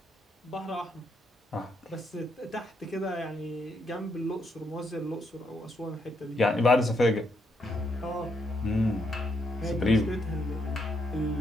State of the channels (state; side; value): normal; both; correlation 0.77